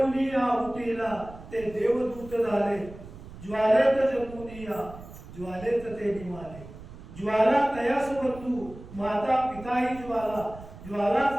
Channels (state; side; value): noise; right; rumble, 16 dB below the sound